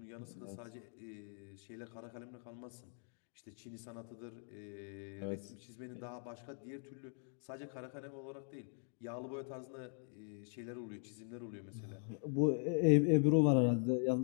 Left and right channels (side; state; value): right; silent; 50 dB below the other